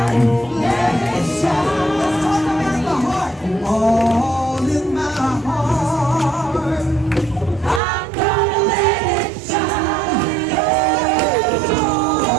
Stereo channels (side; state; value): left; drops out; at 7.8 s